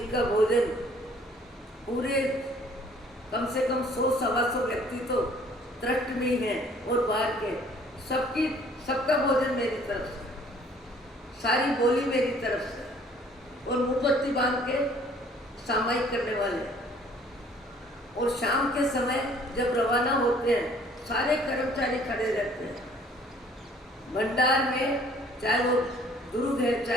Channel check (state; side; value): normal; both; correlation 0.57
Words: का भोजन पूरे कम से कम 100-125 व्यक्ति तो ट्रस्ट में ही हैं और बाहर के सबका भोजन मेरी तरफ से, सारी बोली मेरी तरफ से, और मोमबत्ती बांध के सामायिक करने वाले। और शाम के समय जब रवाना होते हैं सारे कर्मचारी खड़े रहते हैं भंडार में, चाहे वो दुर्ग है,